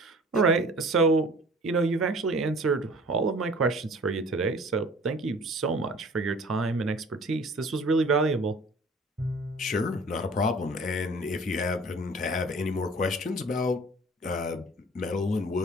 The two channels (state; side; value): normal; both; correlation 0.47